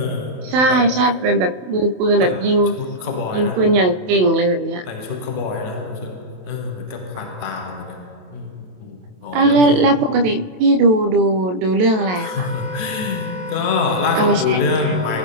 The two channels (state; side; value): late; left; 27 ms